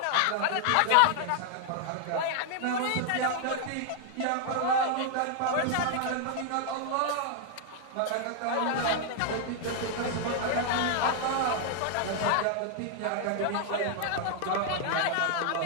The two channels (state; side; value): different; both; correlation 0.00